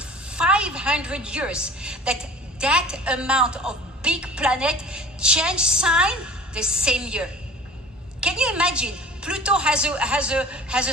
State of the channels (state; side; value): normal; both; correlation 0.44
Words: years that amount of big planet change sign the same year. Can you imagine? Pluto has a